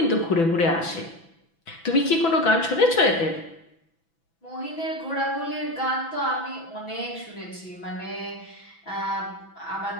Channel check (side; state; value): right; late; 6.0 ms